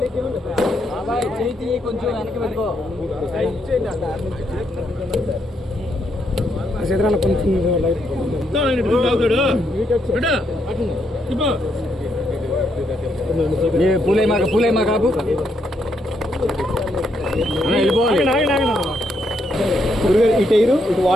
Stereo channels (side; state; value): both; normal; correlation 0.76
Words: వెనక్కి పెట్టుకో. పూలే మా కాపు ఇటు ఎయిరు ఇటు